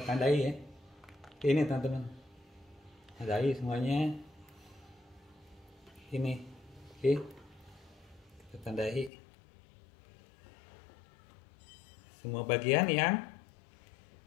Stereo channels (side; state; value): right; drops out; at 9.1 s